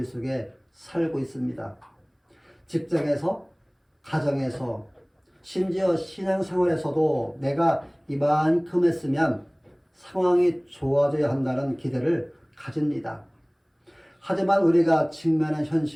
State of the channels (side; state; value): both; identical; correlation 1.00